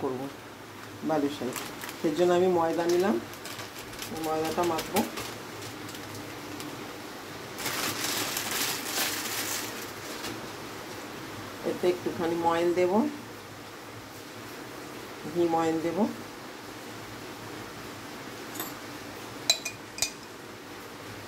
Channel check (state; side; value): identical; both; correlation 1.00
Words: করব। বালুশাহী সেই জন্য আমি ময়দা নিলাম, ময়দাটা মাখবো। এতে একটুখানি ময়ন দেব, ঘি ময়ন দেব।